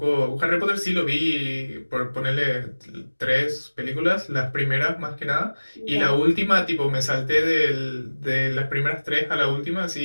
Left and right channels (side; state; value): both; inverted; correlation -1.00